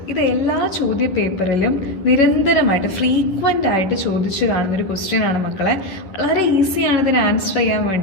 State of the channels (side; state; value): right; late; 11 ms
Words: ഇത് എല്ലാ ചോദ്യ പേപ്പറിലും നിരന്തരമായിട്ട് ഫ്രീക്വൻ്റ് ആയിട്ട് ചോദിച്ചു കാണുന്നൊരു ക്വസ്റ്റ്യൻ ആണ് മക്കളെ. വളരെ ഈസിയാണ് ഇതിന് ആൻസർ ചെയ്യാൻ